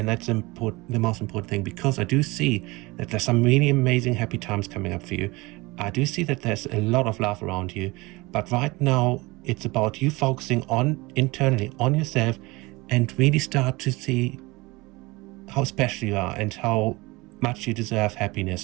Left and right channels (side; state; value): left; quieter; 23.0 dB